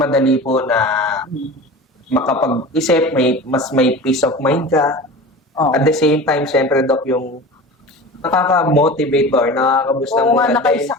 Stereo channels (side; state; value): both; normal; correlation 0.34